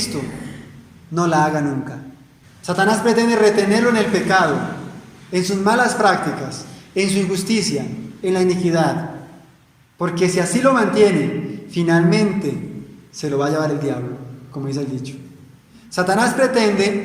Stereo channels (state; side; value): identical; both; correlation 1.00